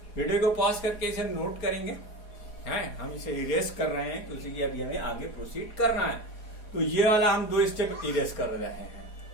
Video को pause करके इसे note करेंगे हैं, हम इसे इरेज कर रहे हैं क्योंकि अभी हमें आगे प्रोसीड करना है। तो ये वाला हम 2 स्टेप इरेज कर रहे हैं,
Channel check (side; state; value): right; late; 4.5 ms